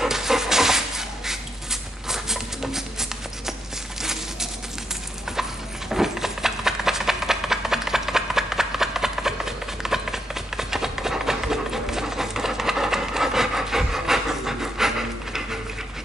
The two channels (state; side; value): normal; both; correlation 0.80